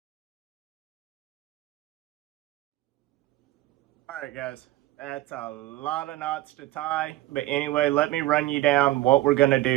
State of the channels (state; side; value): quieter; left; 16.4 dB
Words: Alright guys, that's a lot of knots to tie, but anyway, let me run you down what we're going to